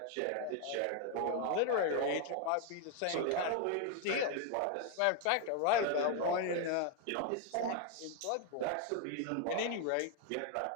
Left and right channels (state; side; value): different; both; correlation 0.00